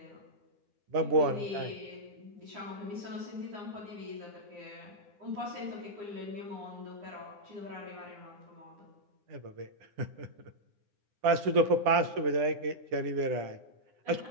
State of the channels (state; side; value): late; left; 9.8 ms